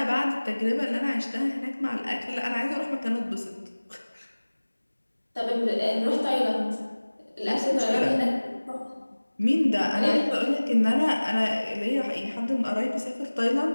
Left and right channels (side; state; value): both; inverted; correlation -1.00